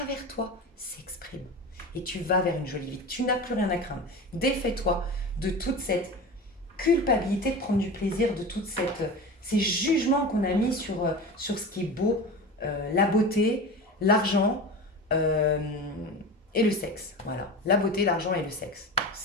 toi, s'exprime. Et tu vas vers une jolie vie. Tu n'as plus rien à craindre. Défais-toi de toute cette culpabilité de prendre du plaisir, de tous ces jugements qu'on a mis sur ce qui est beau, la beauté, l'argent et le sexe. Voilà, la beauté, l'argent et le sexe.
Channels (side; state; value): both; normal; correlation 0.30